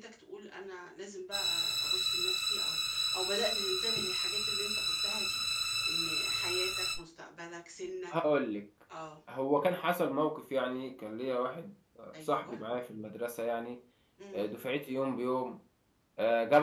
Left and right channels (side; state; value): both; identical; correlation 1.00